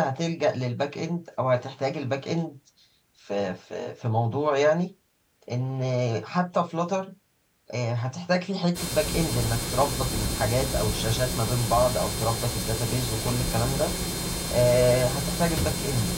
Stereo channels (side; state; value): both; identical; correlation 1.00